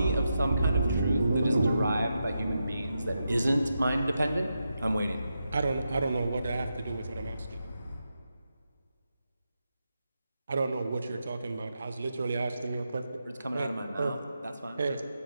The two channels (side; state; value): both; inverted; correlation -0.87